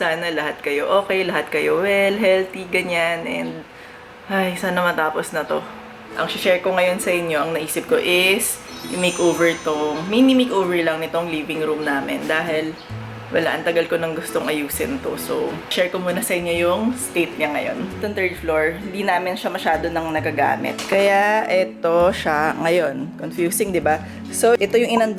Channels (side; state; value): both; identical; correlation 1.00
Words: lahat kayo okay, lahat kayo well, healthy, ganyan. And, ay, sana matapos na to. Ang share ko ngayon sa inyo, ang naisip ko is i-makeover tong, mini makeover lang nitong living room namin dahil wala, ang tagal ko nang gustong ayusin to. So, share ko muna sa inyo yung state niya ngayon. Itong third floor, hindi namin siya masyado nang nagagamit. Kaya, ito siya ngayon. Confusing, di ba? So, ito yung